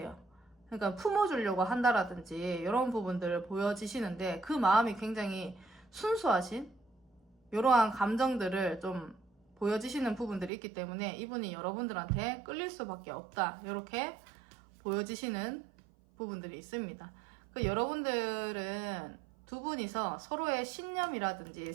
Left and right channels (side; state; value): left; drops out; at 10.5 s